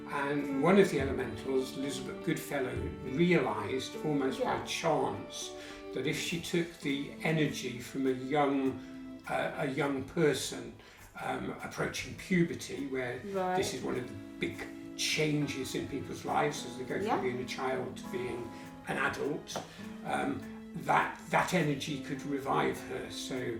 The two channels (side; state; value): both; identical; correlation 1.00